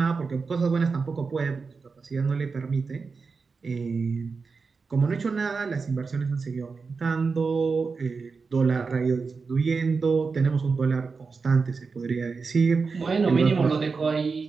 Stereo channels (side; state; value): left; quieter; 4.7 dB